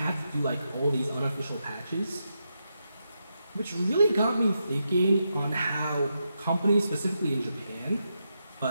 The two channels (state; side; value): inverted; both; correlation -0.85